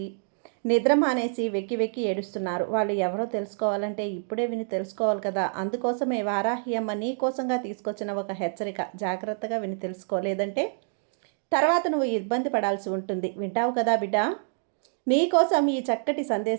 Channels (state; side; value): silent; left; digital silence